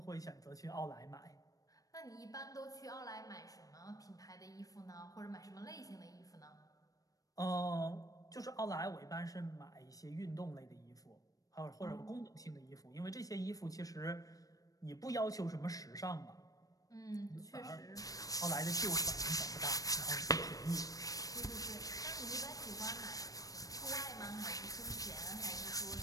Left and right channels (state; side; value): late; right; 0.17 ms